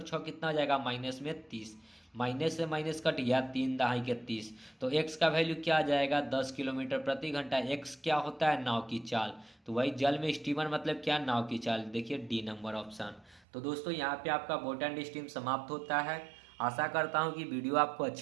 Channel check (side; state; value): left; drops out; at 13.4 s